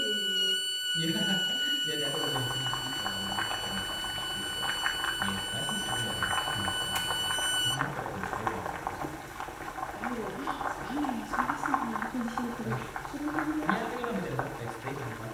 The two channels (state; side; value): identical; both; correlation 1.00